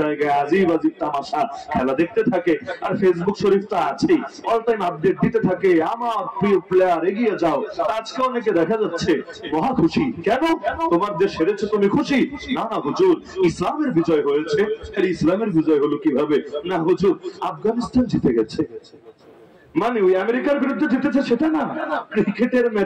জায়গায় আজিব আজিব তামাশা খেলা দেখতে থাকে। আর ফেসবুক শরীফ তো আছেই, অল টাইম আপডেট দিতে থাকে, আমার প্রিয় প্লেয়ার এগিয়ে যাও। আজকে অনেকে দেখা যাচ্ছে মহা খুশি, কেন তোমার দেশ হেরেছে তুমি খুশি? না না হুজুর, ইসলামের বিজয় হয়েছে। ইসলামের বিজয় হলো কিভাবে? না হুজুর, আফগানিস্তান জিতে গেছে মানে ওই আমেরিকার বিরুদ্ধে জিতেছে সেটা না, ক্রিকেটের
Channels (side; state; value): both; identical; correlation 1.00